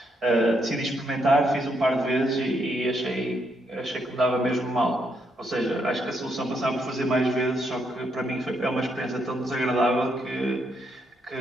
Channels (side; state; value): both; normal; correlation 0.77